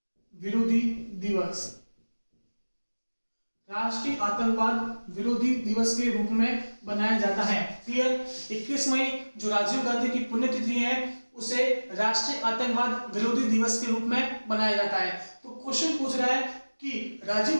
विरोधी दिवस, राष्ट्रीय आतंकवाद विरोधी दिवस के रूप में बनाया जाता है। क्लियर? 21 मई जो राजीव गांधी की पुण्यतिथि है उसे राष्ट्रीय आतंकवाद विरोधी दिवस के रूप में बनाया जाता है। तो क्वेश्चन पूछ रहा है कि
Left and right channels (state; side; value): inverted; both; correlation -1.00